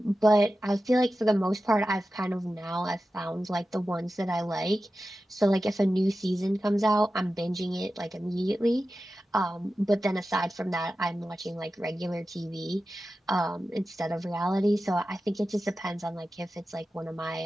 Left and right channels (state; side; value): normal; both; correlation 0.93